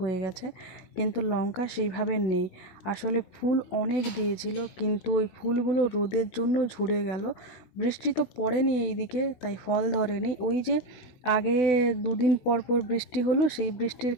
গেছে, কিন্তু লঙ্কা সেইভাবে নেই। আসলে ফুল অনেক দিয়েছিল, কিন্তু ওই ফুলগুলো রোদের জন্য ঝরে গেল। বৃষ্টি তো পড়েনি এইদিকে, তাই ফল ধরেনি। ওই যে আগে দুদিন পর পর বৃষ্টি হলো, সেই বৃষ্টির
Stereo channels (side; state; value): right; late; 16 ms